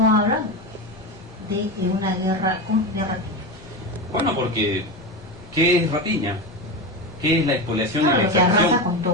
hablan de una guerra de Rapiña. Bueno, porque ¿qué es Rapiña? ¿Qué es la expoliación y la lo que arrasa con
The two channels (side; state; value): both; normal; correlation 0.20